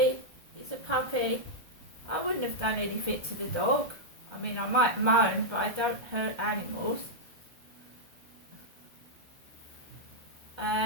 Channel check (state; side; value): late; left; 1.3 ms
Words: he's a puppy. I wouldn't have done anything to the dog. I mean, I might moan, but I don't hurt animals.